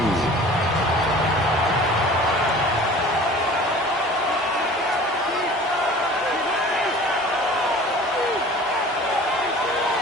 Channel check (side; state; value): both; normal; correlation 0.44